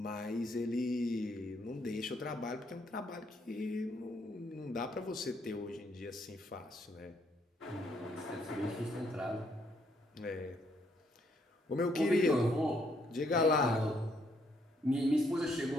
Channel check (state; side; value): normal; both; correlation 0.72